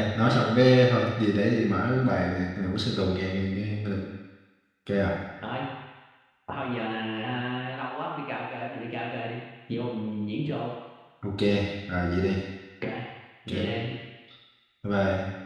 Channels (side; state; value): both; identical; correlation 1.00